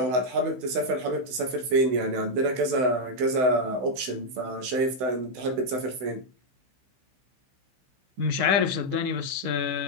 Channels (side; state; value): left; late; 16 ms